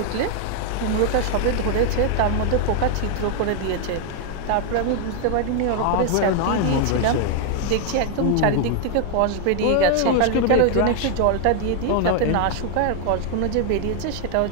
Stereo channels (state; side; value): different; both; correlation 0.00